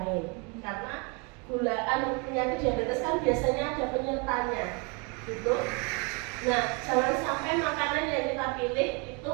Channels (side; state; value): left; quieter; 31.6 dB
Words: Karena penyakit diabetes kan biasanya ada penyertanya, gitu. Nah, jangan sampai makanan yang kita pilih